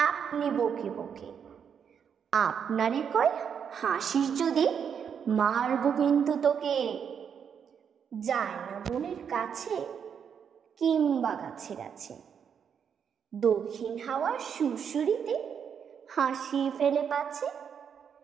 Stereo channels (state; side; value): quieter; left; 7.5 dB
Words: আপনি বকে বকে। আপনারে কয় হাসিস যদি মারবো কিন্তু তোকে। যায় না বনের কাছে কিংবা গাছে গাছে, দক্ষিণ হাওয়ার সুরসুরিতে হাসি ফেলে পাছে।